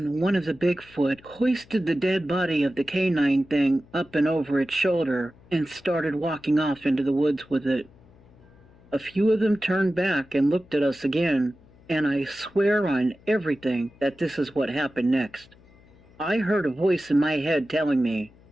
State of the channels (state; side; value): noise; left; hum, 27 dB below the sound